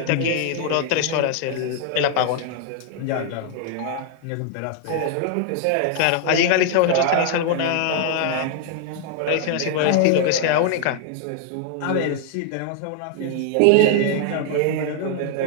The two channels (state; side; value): different; both; correlation 0.00